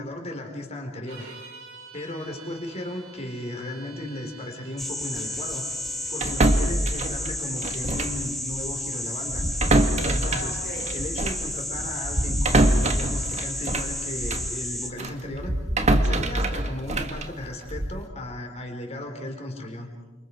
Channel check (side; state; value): both; normal; correlation 0.67